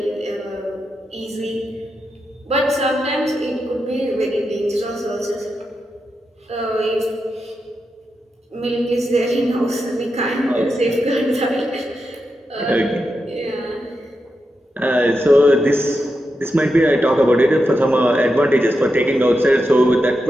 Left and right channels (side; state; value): both; normal; correlation 0.87